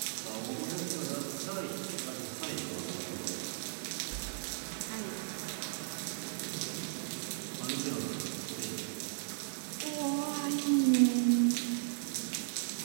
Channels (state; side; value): silent; left; digital silence